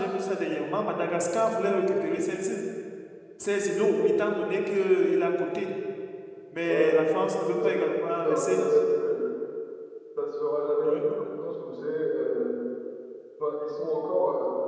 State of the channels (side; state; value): both; identical; correlation 1.00